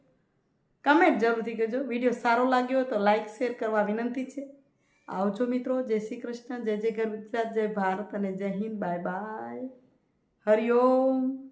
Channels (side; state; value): both; identical; correlation 1.00